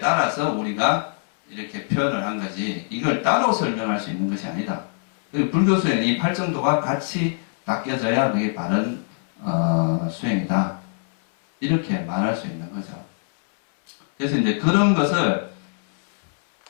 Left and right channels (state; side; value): silent; right; 62 dB below the other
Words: 우리가 이렇게 표현을 한 거지 이걸 따로 설명할 수 있는 것이 아니다. 불교 수행은 이 팔정도가 같이 닦여져야 그게 바른 수행이다. 이렇게 말할 수 있는 거죠. 그래서 이제 그런 것을